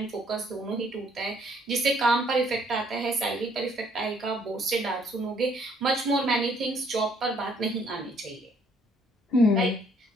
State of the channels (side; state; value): both; normal; correlation 0.65